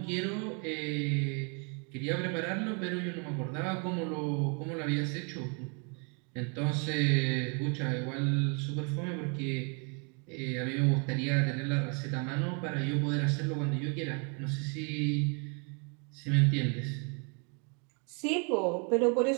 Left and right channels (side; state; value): left; quieter; 36.9 dB